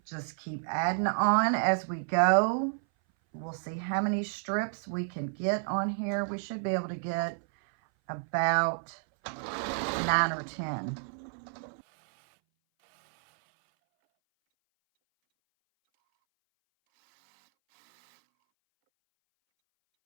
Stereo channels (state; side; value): silent; left; 58 dB below the other